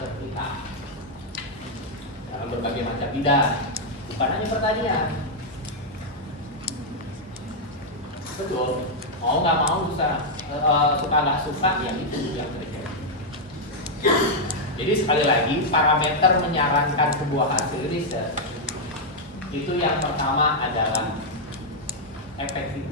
kita. dalam berbagai macam bidang, bukan hanya pertanian. Betul, mau nggak mau suka nggak suka ya itu yang terjadi. Jadi sekali lagi parameter menyarankan sebuah hasil riset itu yang pertama adalah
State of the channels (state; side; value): normal; both; correlation -0.02